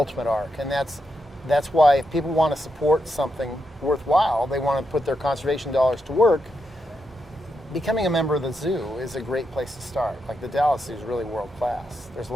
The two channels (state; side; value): normal; both; correlation 0.84